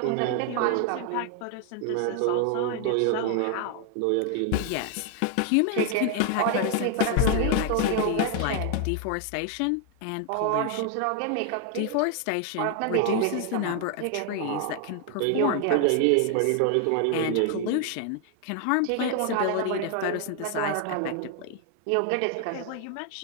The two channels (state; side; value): different; both; correlation 0.00